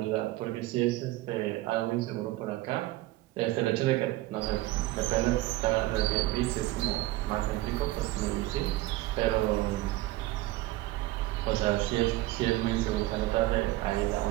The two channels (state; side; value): quieter; left; 17.6 dB